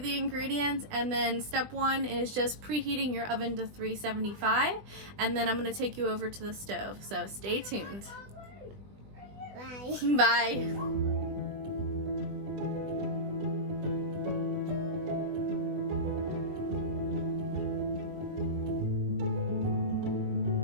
ingredients, and then step one is just preheating your oven to 375, and then I'm gonna take you over to the stove. So stay tuned. Bye. Bye.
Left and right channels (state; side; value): late; left; 20 ms